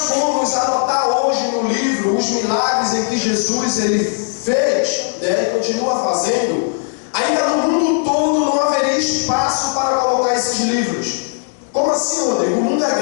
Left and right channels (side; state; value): right; silent; 60 dB below the other